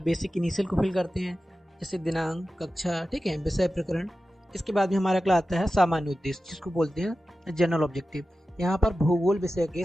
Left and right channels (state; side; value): normal; both; correlation 0.94